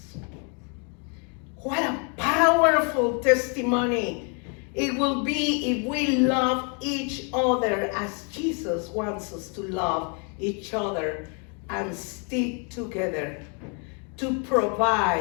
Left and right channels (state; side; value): quieter; right; 37.5 dB